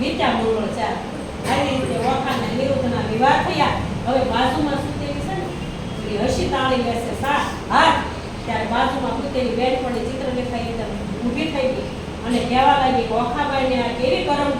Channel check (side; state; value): both; identical; correlation 1.00